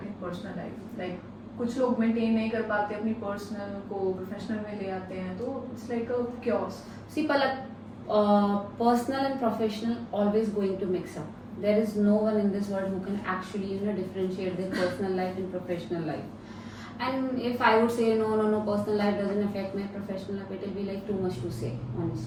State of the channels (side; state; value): both; identical; correlation 1.00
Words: and personal life? Like कुछ लोग maintain नहीं कर पाते, अपनी personal को professional में ले आते हैं, तो it's like a chaos. See, Palak, personal and professional always going to mix up. There is no one in this world who can actually differentiate their personal life and professional life. And if I would say no, personal life doesn't affect my professional life, it will be like too much to say,